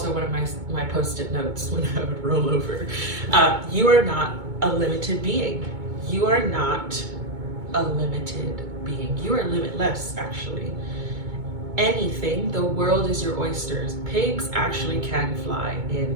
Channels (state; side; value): late; left; 2.2 ms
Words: one of my post-it notes when I would roll over. You are not a limited being. You are not a limited being. You are limitless, actually. Anything, the world is your oysters. Pigs actually can fly in